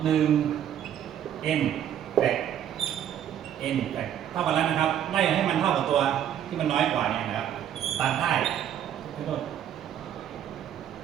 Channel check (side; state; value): left; quieter; 10.1 dB